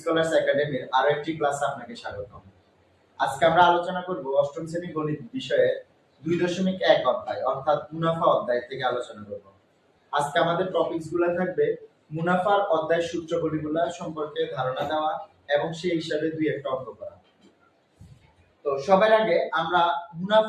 একাডেমির আরো একটি ক্লাসে আপনাকে স্বাগতম। আজকে আমরা আলোচনা করব অষ্টম শ্রেণী গণিত বিষয়ে 2.1 অধ্যায় অর্থাৎ মুনাফা অধ্যায় থেকে আলোচনা করব। আজকে আমাদের টপিকস গুলো থাকবে মুনাফার অধ্যায় সূত্রগুলো সম্পর্কে ধারণা দেওয়া এবং সেই হিসাবে দুই একটা অঙ্ক করা। তো সবার আগে আমরা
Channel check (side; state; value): both; identical; correlation 1.00